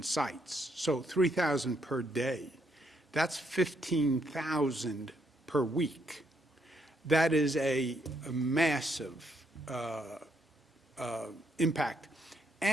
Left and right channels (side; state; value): both; normal; correlation 0.75